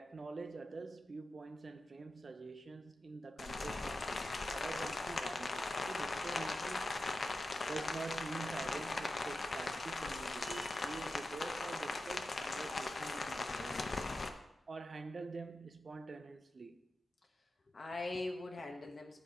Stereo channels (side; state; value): both; normal; correlation 0.91